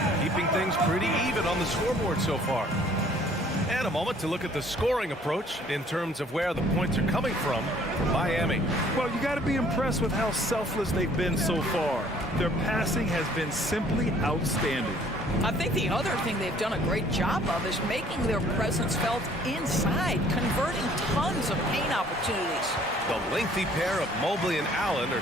keeping things pretty even on the scoreboard so far. And a moment to look at the scoring approach in terms of where the points are coming from Miami. Well, you got to be impressed with how selfless they've been so far. Their passing has been simply outstanding. I think the other thing they've done a great job of is making their presence felt inside, converting tons of paint opportunities. The lengthy pair of Mobley and Allen are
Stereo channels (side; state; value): both; normal; correlation 0.58